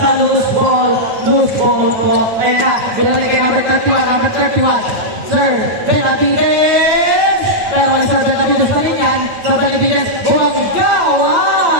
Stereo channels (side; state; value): left; late; 8.9 ms